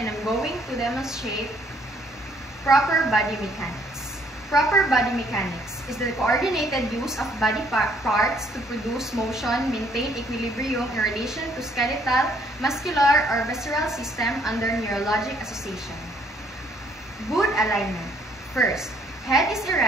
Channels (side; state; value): both; normal; correlation 0.64